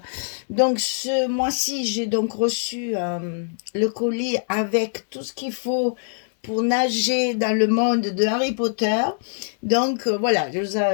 Donc ce mois-ci, j'ai donc reçu le colis avec tout ce qu'il faut pour nager dans le monde de Harry Potter. Donc voilà,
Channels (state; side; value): silent; right; 63 dB below the other